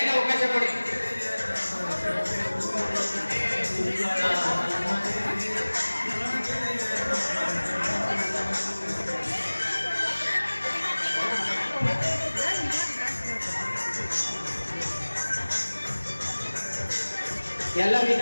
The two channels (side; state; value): both; inverted; correlation -1.00